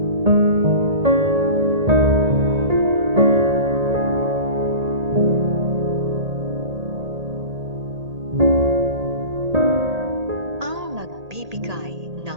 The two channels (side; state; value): left; late; 1.8 ms